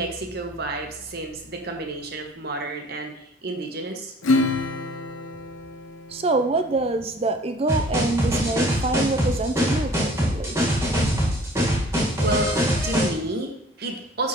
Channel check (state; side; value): normal; both; correlation 0.50